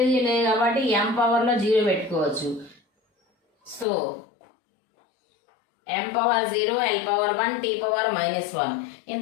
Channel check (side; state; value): right; drops out; at 3.9 s